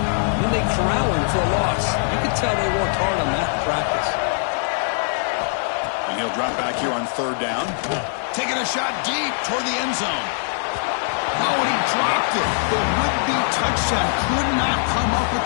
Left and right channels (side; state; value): right; silent; 64 dB below the other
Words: then they corral him for a loss. You could tell they worked hard on that in practice. And he'll drop back here on third down. Taking a shot deep toward the end zone. Oh, and he dropped it. The would-be touchdown could not come up with